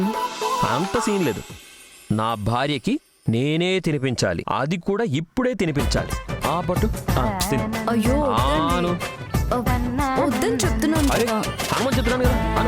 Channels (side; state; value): both; identical; correlation 1.00